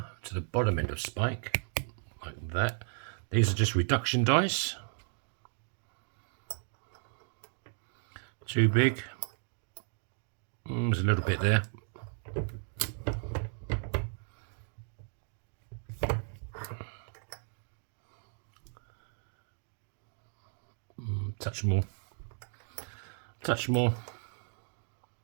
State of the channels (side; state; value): left; silent; 55 dB below the other